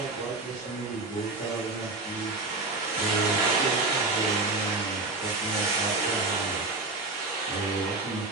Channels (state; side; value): quieter; left; 3.4 dB